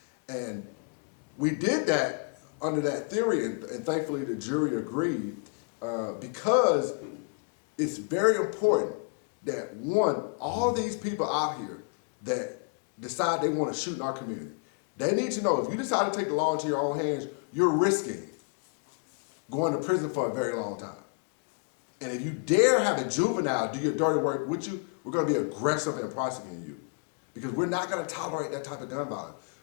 And we did that under that theory, and thankfully the jury agreed, because it's very important that, one, all these people out here that decide they want to shoot in our community, they need to know if you decide to take the law into your own hands, you're risking going to prison for a very long time. And if you dare have a juvenile do your dirty work with you, we're going to be aggressive in prosecuting you, because we're not going to tolerate that type of gun violence.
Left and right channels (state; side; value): quieter; right; 36.2 dB